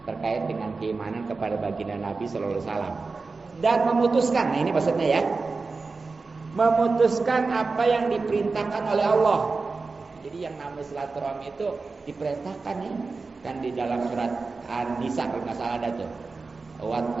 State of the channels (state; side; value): quieter; left; 4.1 dB